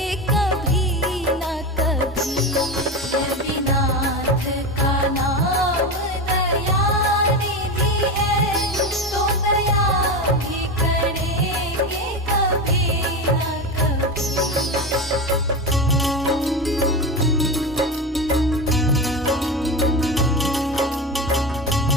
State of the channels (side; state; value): both; normal; correlation 0.20